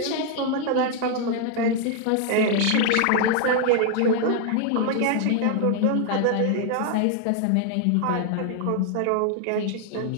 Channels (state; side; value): different; both; correlation 0.00